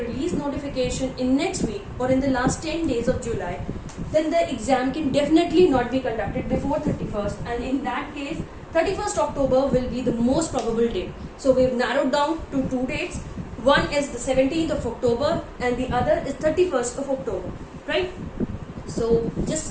notification in next week or in the last 10 days of July, then the exam can definitely not be conducted before 31st, and in that case 31st October will be the most probable date. So we've narrowed down to two dates. One is the 17th of October and the other is 31st of October, right? So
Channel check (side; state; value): both; identical; correlation 1.00